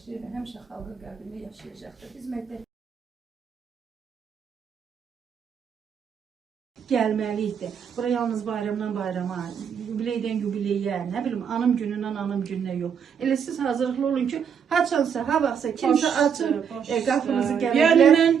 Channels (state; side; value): quieter; left; 7.4 dB